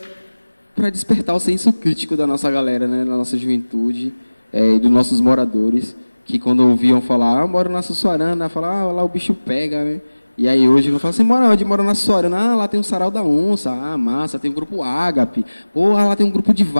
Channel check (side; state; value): both; inverted; correlation -1.00